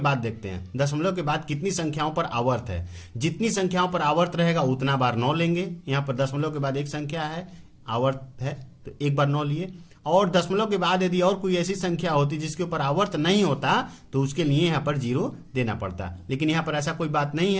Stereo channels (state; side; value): identical; both; correlation 1.00